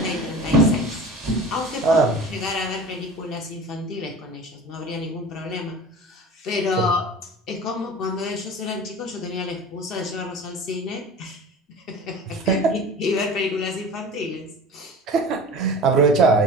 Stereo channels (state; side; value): normal; both; correlation 0.37